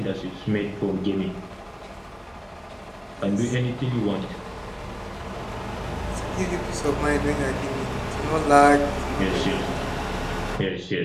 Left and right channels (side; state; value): both; identical; correlation 1.00